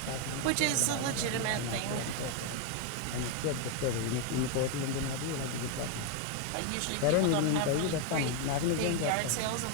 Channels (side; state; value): both; different; correlation 0.01